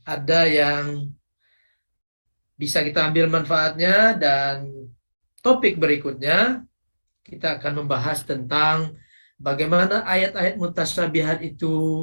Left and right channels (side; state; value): both; inverted; correlation -1.00